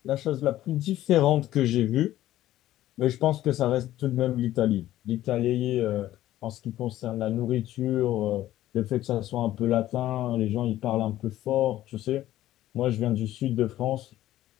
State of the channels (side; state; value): right; quieter; 14.0 dB